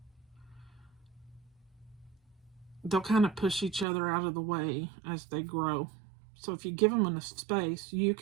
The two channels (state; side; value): drops out; left; at 3.9 s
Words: they'll kind of push each other out of the way as they grow. So if you give them enough space, you